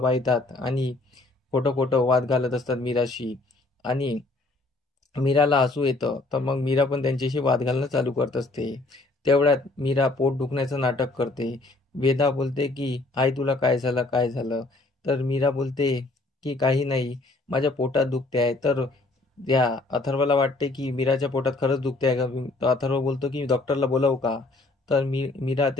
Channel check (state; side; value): quieter; right; 3.1 dB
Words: येतात आणि खोटं खोटं वाद घालत असतात मीराशी आणि मीराला हसू येतं. तर मग मीरा पण त्यांच्याशी वाद घालणं चालू करत असते. तेवढ्यात मीरा पोट दुखण्याचं नाटक करते. वेदा बोलते की आई तुला काय झालं काय झालं. तर मीरा बोलते की काही नाही, माझ्या पोटात दुखते आहे. तर त्या अथर्वला वाटते की मीराच्या पोटात खरंच दुखते आहे का. तर अथर्व बोलतो की डॉक्टरला बोलावू का. तर मीरा